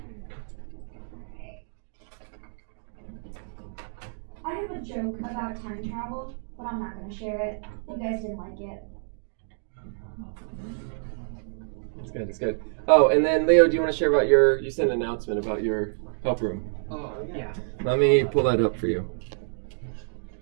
I have a joke about time travel, but I'm not going to share it. You guys didn't like it. It's good, it's good. Oh, and then Leo, do you want to share about you sent an announcement about your help room? Oh, yeah. Let me pull that up for you.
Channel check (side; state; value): left; silent; digital silence